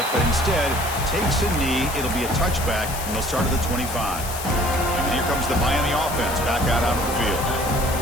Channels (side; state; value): left; noise; hiss, 9 dB below the sound